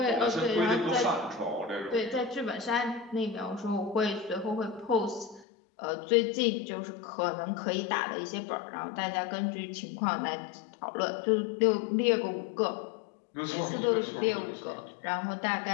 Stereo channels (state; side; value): drops out; right; at 5.5 s